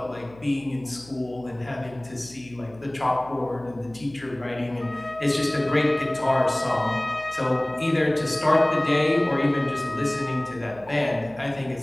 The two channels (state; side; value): noise; left; hum, 22 dB below the sound